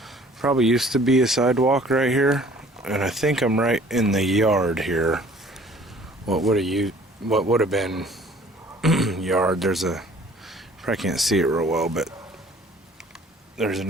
Probably used to be a sidewalk right here. And I think I'm right in the yard here. What would have been yard. There's a, probably can't see it real well, but there's a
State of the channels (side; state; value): both; normal; correlation 0.53